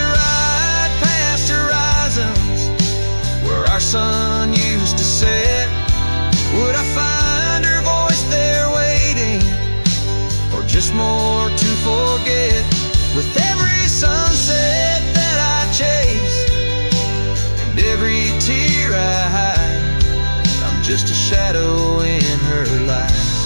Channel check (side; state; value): both; inverted; correlation -1.00